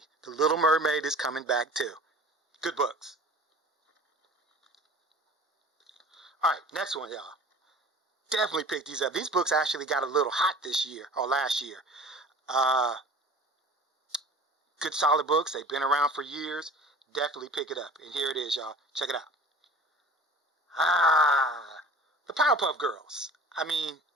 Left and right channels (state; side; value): normal; both; correlation 0.43